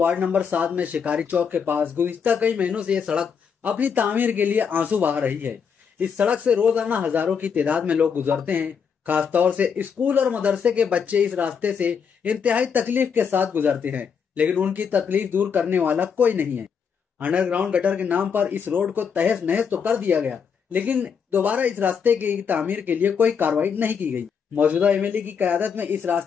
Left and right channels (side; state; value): right; quieter; 6.6 dB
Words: नंबर 7 में शिकारी चौक के पास गुज़िश्ता कई महीनों से ये सड़क अपनी तामीर के लिए आंसू बहा रही है। इस सड़क से रोजाना हजारों की तादाद में लोग गुजरते हैं। खासतौर से स्कूल और मदरसे के बच्चे इस रास्ते से इंतहाई तकलीफ के साथ गुजरते हैं, लेकिन उनकी तकलीफ दूर करने वाला कोई नहीं है। अंडरग्राउंड गटर के नाम पर इस रोड को तहस नहस तो कर दिया गया, लेकिन दोबारा इस रास्ते की तामीर के लिए कोई कार्रवाई नहीं की गई। मौजूदा एमएलए की क़यादत में इस